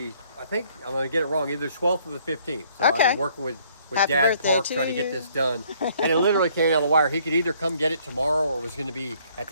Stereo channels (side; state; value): both; inverted; correlation -0.63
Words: I think I'm going to get it wrong, either 12th or the 15th. So I've been working with Dad Park trying to get this done. And it literally came out of the wire. He could either come get it tomorrow or it was going to be at